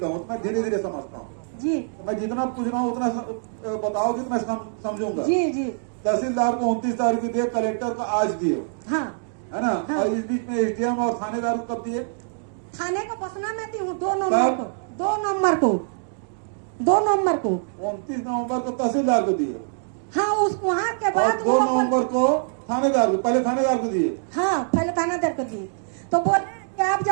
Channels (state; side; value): silent; left; digital silence